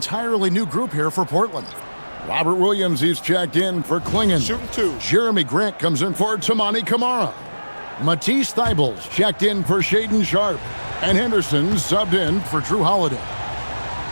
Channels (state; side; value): inverted; both; correlation -1.00